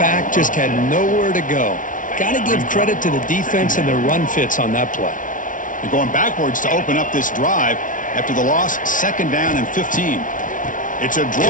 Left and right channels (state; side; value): late; right; 0.38 ms